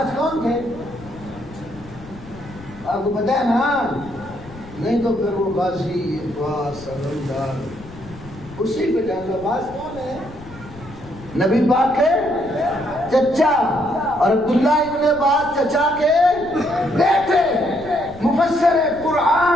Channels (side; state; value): left; noise; rumble, 18 dB below the sound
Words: کون تھے آپ کو پتہ ہے نا؟ نہیں تو پھر وہ غازی عباس سمندار اسی پہ جانا. عباس کون ہے؟ نبی پاک کے چچا, اور عبداللہ ابن عباس چچا کے بیٹے, مفسر